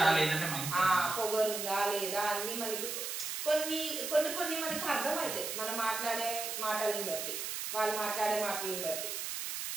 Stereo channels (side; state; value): right; noise; hiss, 4 dB below the sound